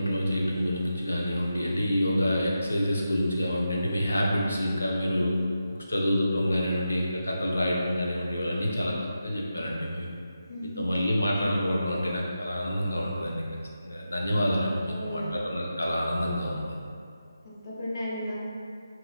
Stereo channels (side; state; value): both; inverted; correlation -0.89